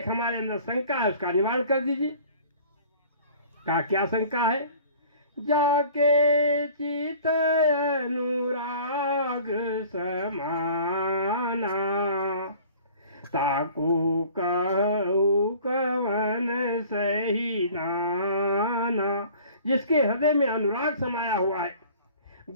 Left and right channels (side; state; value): both; inverted; correlation -0.48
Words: हमारे अंदर शंका है, उसका निवारण कर दीजिए। का क्या शंका है? जाके चित अनुराग समाना, ताको कहू कवन सही नाना। जिसके हृदय में अनुराग समाया हुआ है,